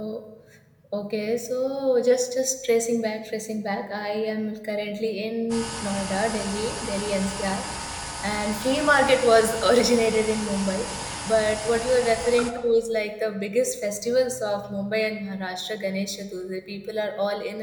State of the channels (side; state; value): both; identical; correlation 1.00